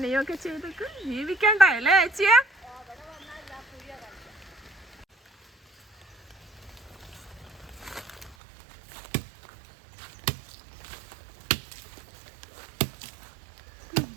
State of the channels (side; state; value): left; drops out; at 8.3 s